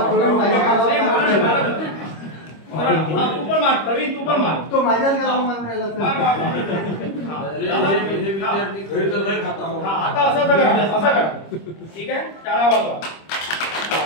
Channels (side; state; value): right; late; 25 ms